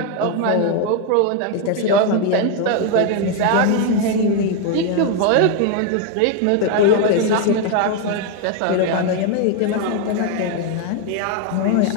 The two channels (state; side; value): different; both; correlation 0.01